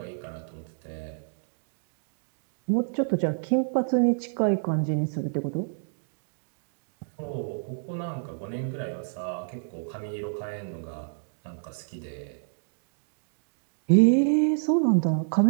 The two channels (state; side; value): silent; left; digital silence